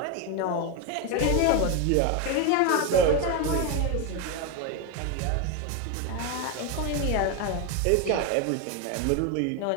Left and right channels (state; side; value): different; both; correlation 0.02